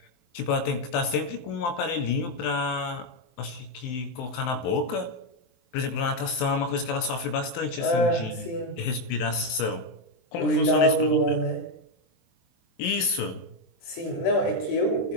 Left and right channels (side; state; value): right; late; 23 ms